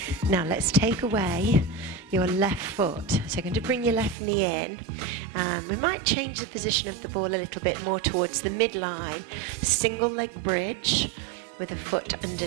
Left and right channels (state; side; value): drops out; left; at 4.2 s